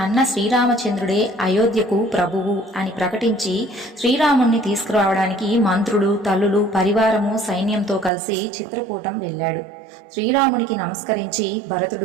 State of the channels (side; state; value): left; drops out; at 8.1 s